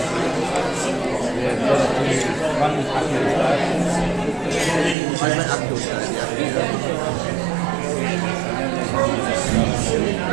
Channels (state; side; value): drops out; left; at 5.0 s